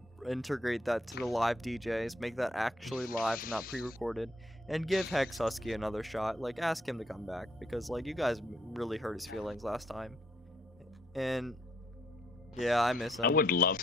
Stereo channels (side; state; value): both; normal; correlation 0.70